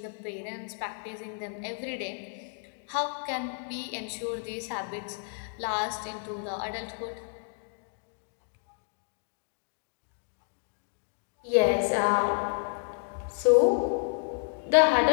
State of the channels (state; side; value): silent; right; 57 dB below the other